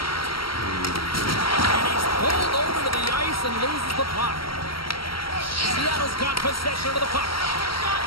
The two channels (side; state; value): right; late; 0.74 ms